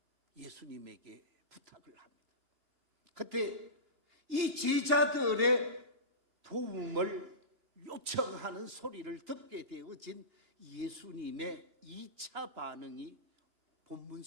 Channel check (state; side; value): late; left; 2.8 ms